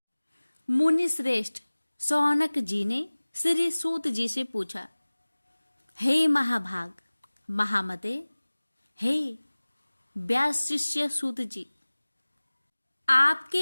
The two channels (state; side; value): inverted; both; correlation -1.00